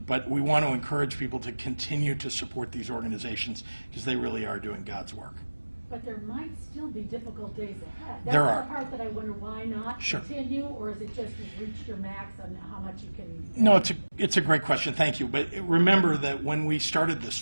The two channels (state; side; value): inverted; both; correlation -1.00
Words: we want to encourage people to continue to support these organizations because they really are doing God's work. But there might still be difficult days ahead. There That's are. the part that I wonder, why not continue, or is it just you've reached your max on how much you can? No, it's a great question. Thank you. But remember that when we started this